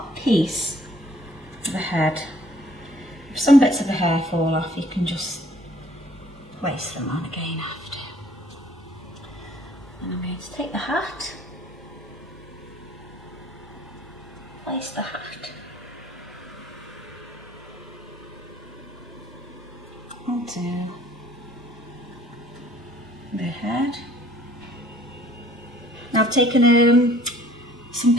piece of the head. If some bits of the hair fall off, you can just place them on again after. And I'm going to take the hat, place the hat onto the head. Now I've taken some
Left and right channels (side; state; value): both; normal; correlation 0.57